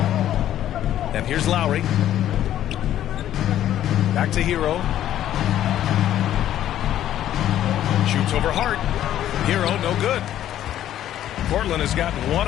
And here's Lowry. Back to Hero. Shoots over Hart. Hero, no good. Portland has gotten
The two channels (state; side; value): quieter; right; 11.8 dB